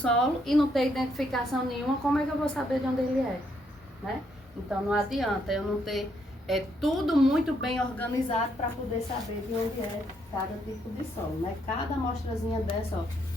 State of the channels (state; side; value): normal; both; correlation 0.74